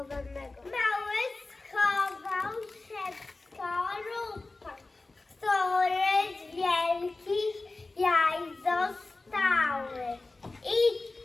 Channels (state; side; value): quieter; right; 3.3 dB